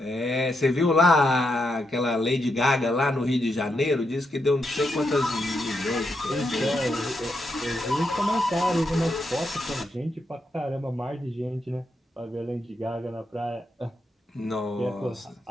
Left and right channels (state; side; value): normal; both; correlation 0.82